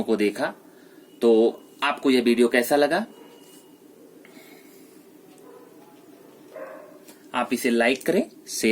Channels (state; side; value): identical; both; correlation 1.00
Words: को देखा। तो आपको यह वीडियो कैसा लगा? आप इसे लाइक करें,